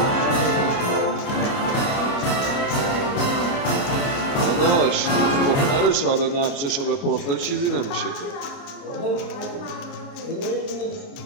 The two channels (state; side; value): late; right; 29 ms